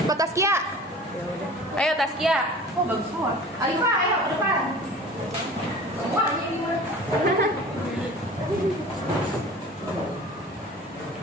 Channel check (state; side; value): normal; both; correlation 0.41